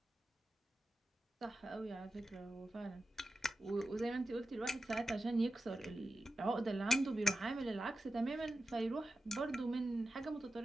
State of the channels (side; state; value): both; normal; correlation 0.91